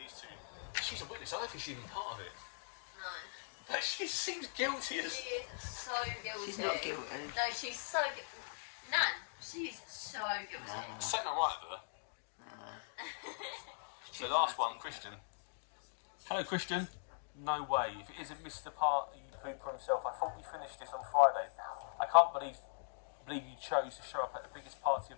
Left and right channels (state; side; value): silent; right; digital silence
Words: two, she's a witness. I don't think she's even part of it. No. But she seems guilty as. She is so guilty. She's not guilty. No, she's so guilty. Nan, she is so guilty. Something not right with her. So last one, Christian. Hello, Christian. No way. If it isn't Mr. Party Pooper himself, I thought we finished this on Friday. I can't believe you chose to show up at the biggest party